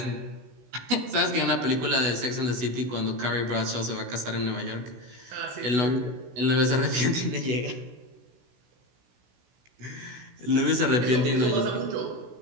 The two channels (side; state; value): left; late; 16 ms